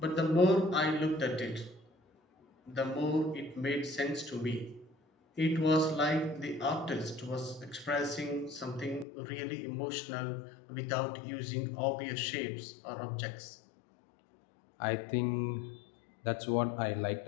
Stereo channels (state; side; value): drops out; right; at 9.1 s